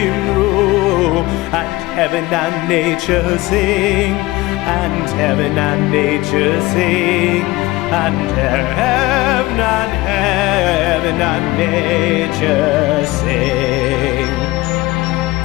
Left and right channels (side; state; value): right; quieter; 19.7 dB